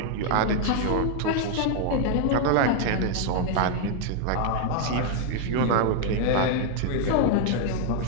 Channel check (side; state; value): both; different; correlation 0.00